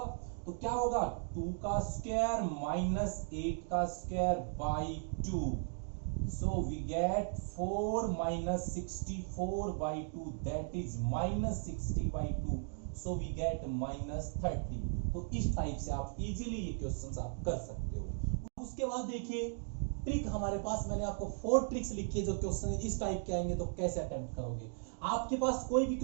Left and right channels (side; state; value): left; silent; 53 dB below the other